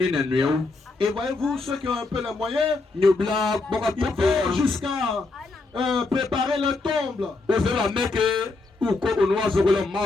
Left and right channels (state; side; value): quieter; right; 3.6 dB